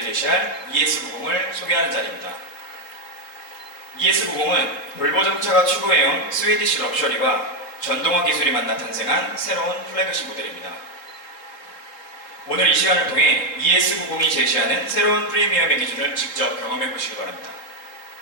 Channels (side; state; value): right; late; 3.6 ms